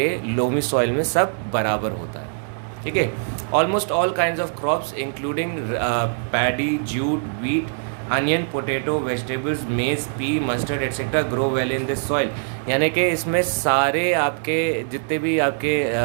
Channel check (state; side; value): silent; left; digital silence